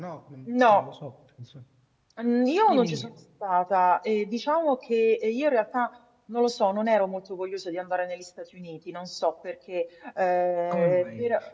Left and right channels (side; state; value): both; identical; correlation 1.00